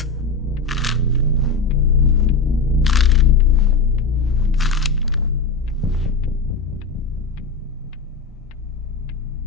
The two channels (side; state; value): right; quieter; 4.3 dB